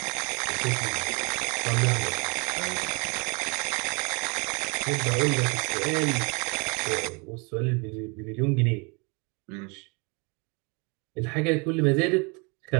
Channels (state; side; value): quieter; left; 31.4 dB